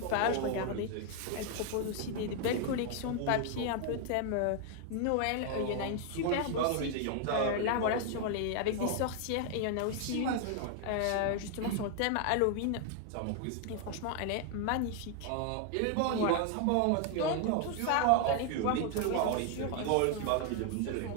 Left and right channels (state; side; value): different; both; correlation 0.00